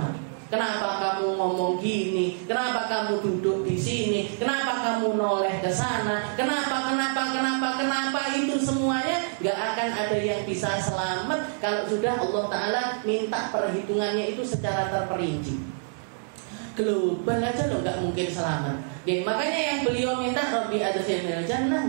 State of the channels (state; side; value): silent; left; 60 dB below the other